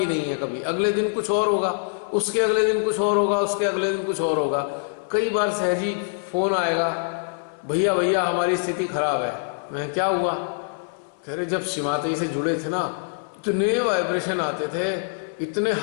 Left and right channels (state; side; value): silent; right; 62 dB below the other